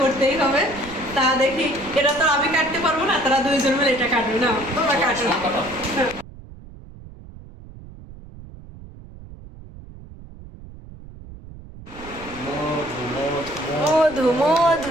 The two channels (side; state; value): right; noise; rumble, 17 dB below the sound